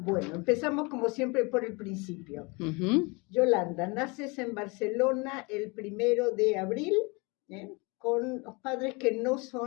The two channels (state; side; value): quieter; right; 28.4 dB